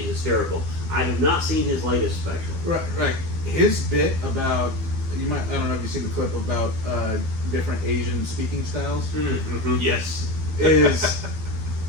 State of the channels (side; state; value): left; late; 12 ms